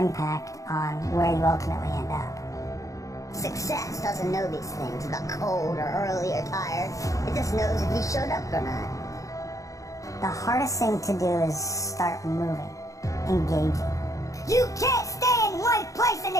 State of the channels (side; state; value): right; late; 0.16 ms